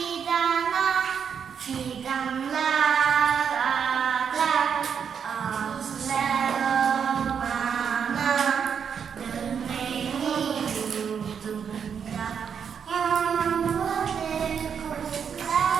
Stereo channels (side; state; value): left; quieter; 7.2 dB